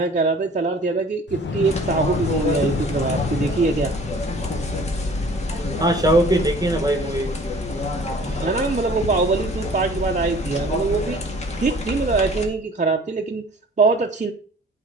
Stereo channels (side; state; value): both; normal; correlation 0.50